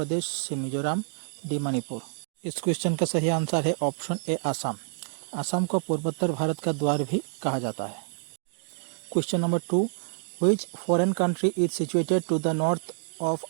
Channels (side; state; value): left; silent; digital silence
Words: सी मिजोरम, डी मणिपुर। इस क्वेश्चन का सही आंसर है ऑप्शन ए आसाम। आसाम को पूर्वोत्तर भारत का द्वार भी कहा जाता है। Question number 2, which foreign country is situated to the north of